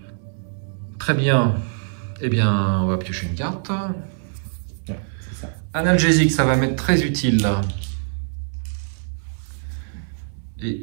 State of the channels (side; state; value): left; silent; 63 dB below the other